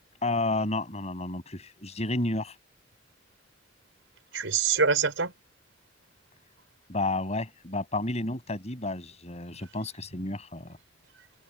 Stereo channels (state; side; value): normal; both; correlation 0.08